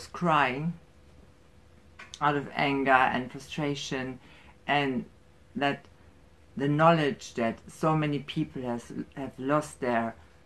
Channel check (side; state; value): both; identical; correlation 1.00